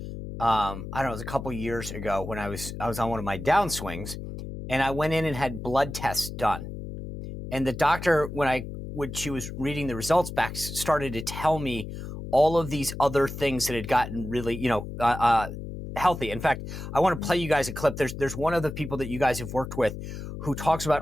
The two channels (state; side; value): noise; left; hum, 9 dB below the sound